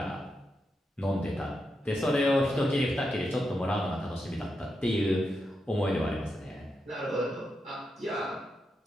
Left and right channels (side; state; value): both; normal; correlation 0.85